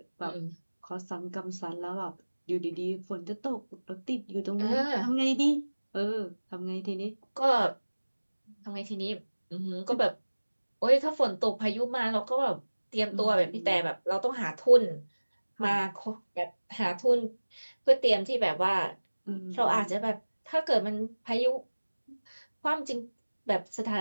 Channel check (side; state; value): both; inverted; correlation -1.00